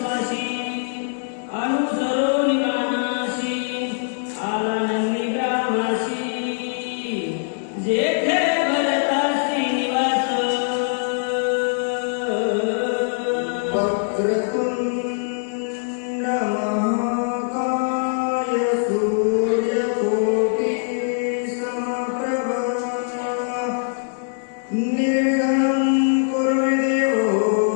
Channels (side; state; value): right; silent; digital silence